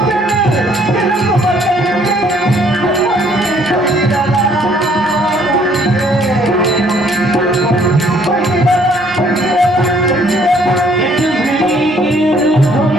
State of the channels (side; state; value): both; normal; correlation 0.62